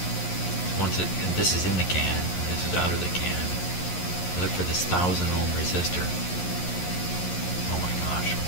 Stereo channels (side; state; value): right; late; 11 ms